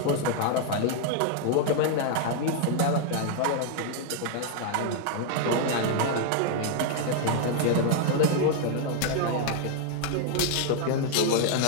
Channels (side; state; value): both; different; correlation 0.00